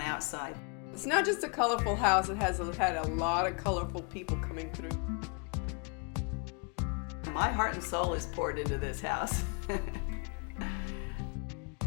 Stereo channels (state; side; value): quieter; right; 35.8 dB